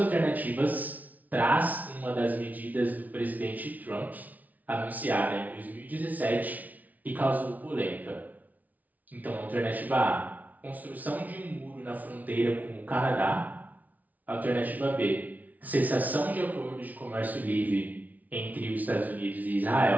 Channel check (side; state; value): left; late; 0.075 ms